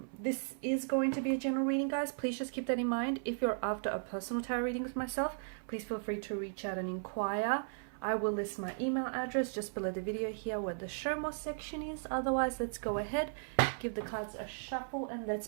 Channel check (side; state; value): left; silent; 54 dB below the other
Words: This is going to be a general reading, guys. Please just keep that in mind. If you're after a personal tarot reading with myself, please feel free to reach out and inquire. I will list my email address just below the video here where the show more section is. Otherwise, let's go ahead, give the cards a shuffle, and let's